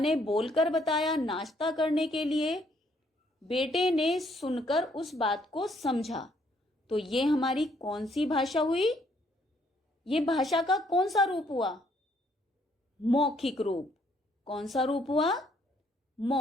बोलकर बताया नाश्ता करने के लिए, बेटे ने सुनकर उस बात को समझा। तो ये हमारी कौन सी भाषा हुई? ये भाषा का कौन सा रूप हुआ? मौखिक रूप। कौन सा रूप हुआ?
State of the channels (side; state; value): both; normal; correlation 0.68